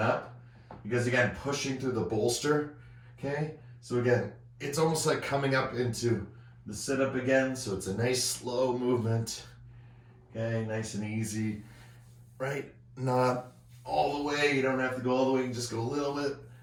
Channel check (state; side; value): identical; both; correlation 1.00